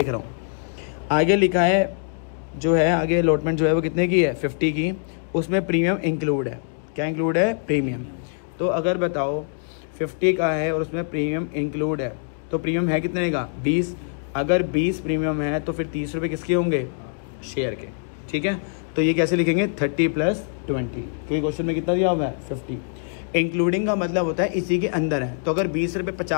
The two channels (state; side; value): silent; right; digital silence